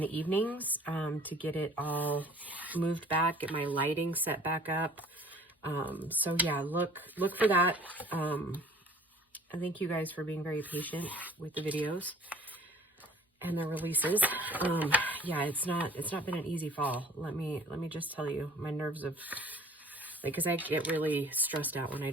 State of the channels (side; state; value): both; normal; correlation 0.50